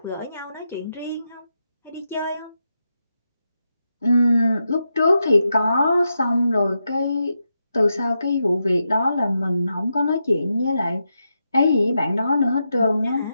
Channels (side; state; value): both; inverted; correlation -0.86